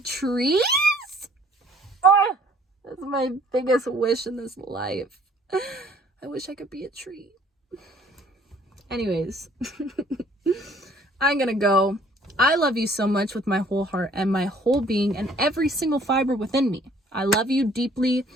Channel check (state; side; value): normal; both; correlation 0.58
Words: Oh, that's my biggest wish in this life. I wish I could be a tree. Anyways, I'm gonna go. I love you so much with my whole heart and my whole being and every single fiber within me. I love you deeply.